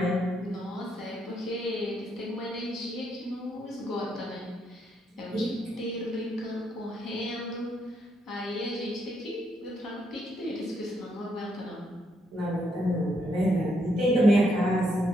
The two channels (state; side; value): normal; both; correlation 0.76